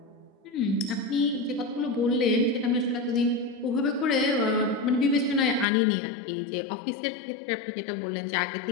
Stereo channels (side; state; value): right; drops out; at 5.7 s